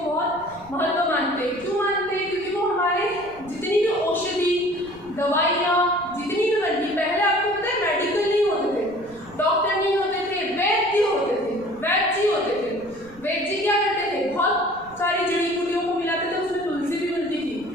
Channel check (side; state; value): right; noise; rumble, 23 dB below the sound